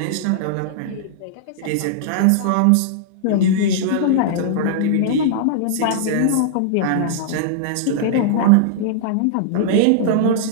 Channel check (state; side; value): different; both; correlation -0.01